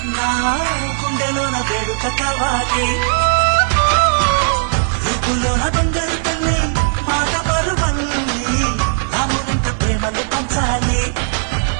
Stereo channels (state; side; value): silent; left; 60 dB below the other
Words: నా గుండెలోన వేడుక కావాలి రూపులోన బంగారు తల్లి మాట పరువల్లి రామునింట ప్రేమలు పంచాలి